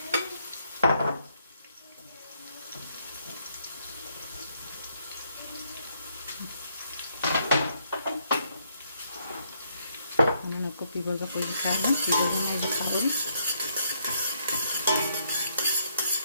انا كوبي بازا خوش كارنا في دورنا دي خبري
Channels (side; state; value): both; inverted; correlation -0.72